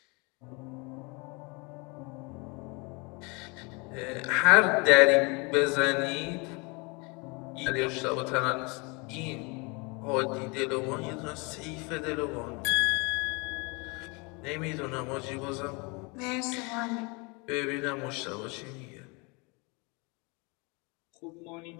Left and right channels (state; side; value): quieter; right; 29.6 dB